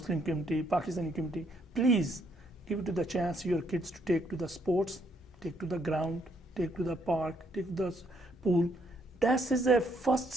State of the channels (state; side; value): normal; both; correlation 0.71